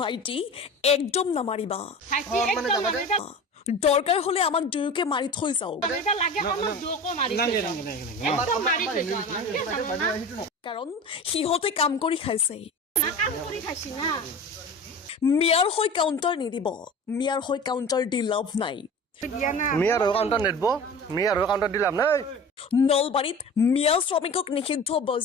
একদম নামাৰিবা ভাইটি একদম নামাৰিবা দৰকাৰ হলে আমাক দুয়োকে মাৰি থৈ যাওক এটা লাগে আমাক দুয়োকো মাৰি থৈ যাওক একদম মাৰি থৈ যাওক কাৰণ সিহঁতে কাম কৰি খাইছে না কাম কৰি খাইছি না মিয়াৰ হৈ কাউণ্টাৰ নিদিব মিয়াৰ হৈ কাউণ্টাৰ দি লাভ নাই মিয়াৰ হৈ কাউণ্টাৰ নেদব মিয়াৰ হৈ কাউণ্টাৰ দিলাম নাই নলবাৰীত মিয়া শ্ৰমিকক নিষিদ্ধ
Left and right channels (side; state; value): both; normal; correlation 0.35